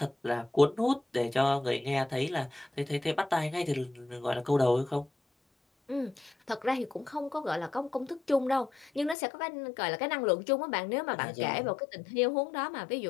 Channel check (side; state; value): right; drops out; at 9.2 s